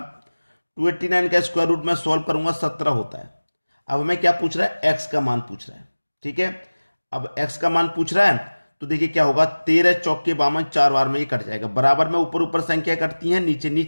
289 का स्क्वायर रूट में सॉल्व करूंगा 17 होता है। अब हमें क्या पूछ रहा है, x का मान पूछ रहा है। ठीक है, अब x का मान पूछ रहा है, तो देखिए क्या होगा, 13 चौके 52, 4 बार में ये कट जाएगा। बराबर में ऊपर ऊपर संख्या कटती है, नीचे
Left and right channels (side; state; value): both; inverted; correlation -1.00